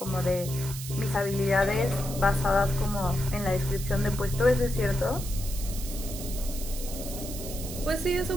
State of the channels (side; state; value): right; noise; hiss, 10 dB below the sound